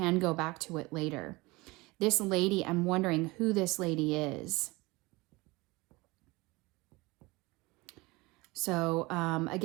go back to it later. This lady, I'm wondering who this lady is. So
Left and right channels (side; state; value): left; quieter; 22.9 dB